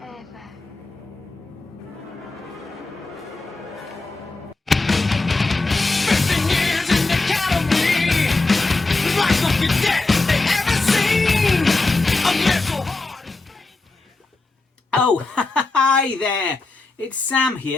Oh, hi there! It's Sam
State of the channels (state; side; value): quieter; right; 3.4 dB